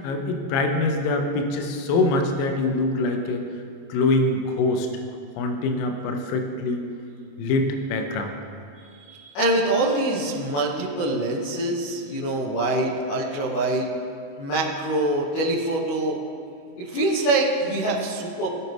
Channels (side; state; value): right; late; 29 ms